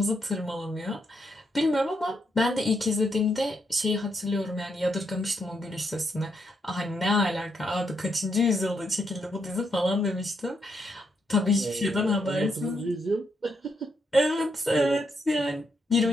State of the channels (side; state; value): both; normal; correlation 0.79